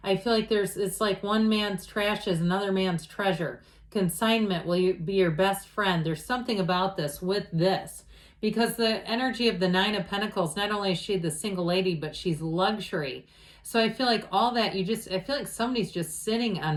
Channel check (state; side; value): identical; both; correlation 1.00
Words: I feel like it's like one man's trash is another man's treasure. Consignment will be your best friend. There's something about this with this. Because the energy of the Nine of Pentacles, not only is she the single lady, but she's luxury. So I feel like all that, I feel like somebody's just sitting